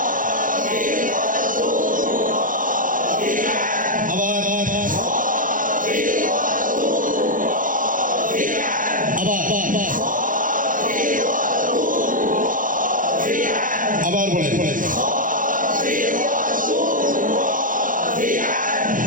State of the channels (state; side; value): late; left; 0.39 ms